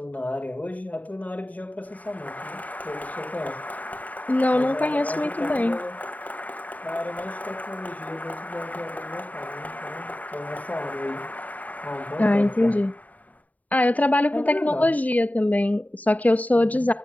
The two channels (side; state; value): right; late; 0.073 ms